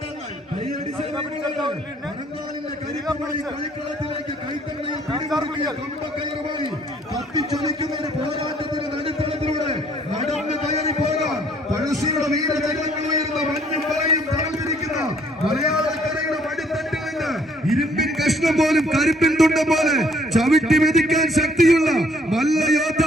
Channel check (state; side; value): normal; both; correlation 0.63